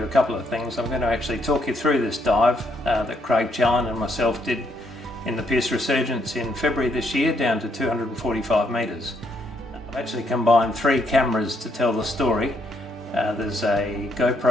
a couple of things. I'm going to actually talk you through this dive that Craig Challen and myself did in the Pearse Resurgence in February this year, down to 245 metres. I've actually combined 3 cameras to tell the story. There's a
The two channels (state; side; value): normal; both; correlation 0.73